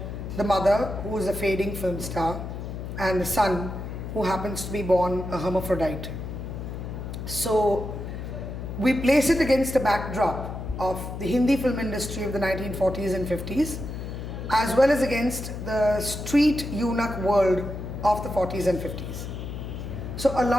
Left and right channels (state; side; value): noise; left; hum, 7 dB below the sound